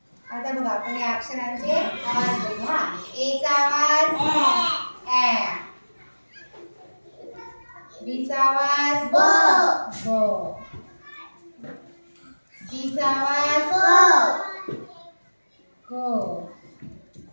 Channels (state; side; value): inverted; both; correlation -1.00